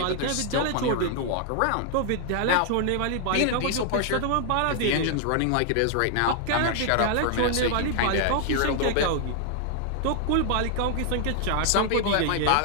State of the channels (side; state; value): both; different; correlation 0.00